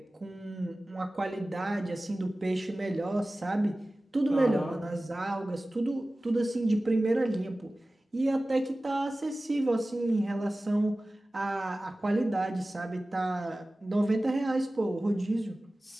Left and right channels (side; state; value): both; normal; correlation 0.97